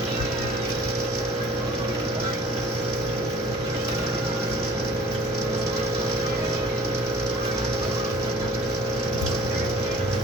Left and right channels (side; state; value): both; normal; correlation 0.49